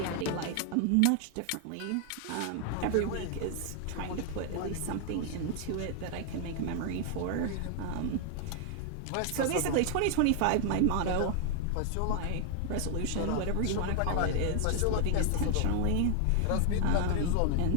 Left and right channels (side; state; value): both; different; correlation 0.00